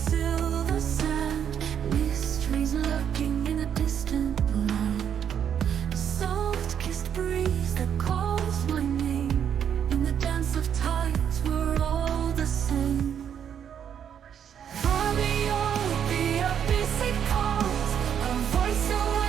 sand, mysteries lurking in a distant land. Soft-kissed breeze that calls my name. In the dance of tides, we're all the same. Far beyond the abyss it calls, a voice so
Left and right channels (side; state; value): left; quieter; 8.6 dB